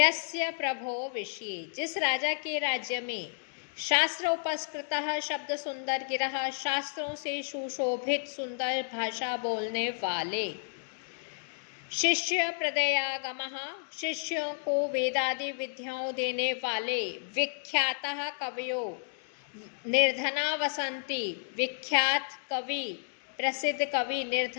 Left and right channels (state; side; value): silent; right; digital silence